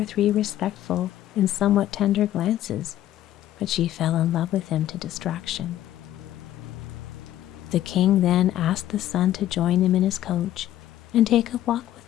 3 respectful and somewhat tender glances, but she fell in love with him to distraction. The king then asked the son to join him in his coach and take a walk with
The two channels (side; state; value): right; quieter; 12.9 dB